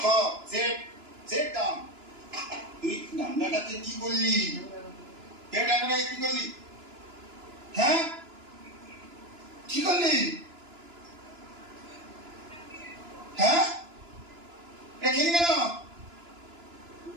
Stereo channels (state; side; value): late; left; 2.9 ms